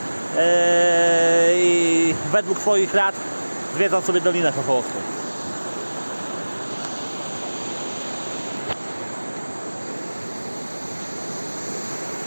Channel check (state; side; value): inverted; both; correlation -1.00